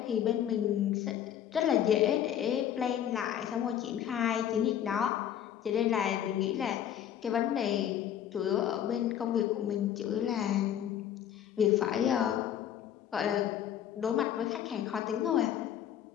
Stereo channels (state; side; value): quieter; right; 10.3 dB